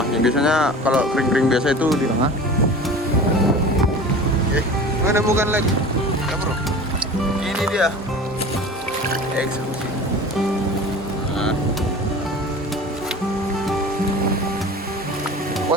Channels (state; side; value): normal; both; correlation 0.38